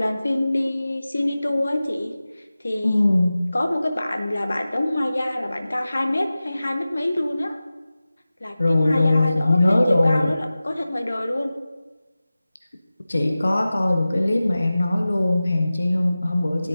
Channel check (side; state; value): both; inverted; correlation -0.96